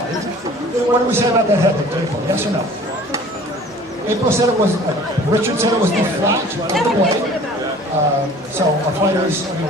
What do we say about that head hit, April? Yes or no? April said it was, Richard said it was the flat of the blade. So our fighters, we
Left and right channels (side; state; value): both; normal; correlation 0.48